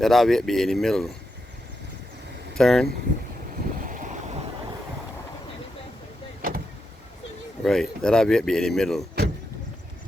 our weight be in the middle. Turn. Right. Let our weight be in the middle.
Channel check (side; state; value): both; normal; correlation 0.85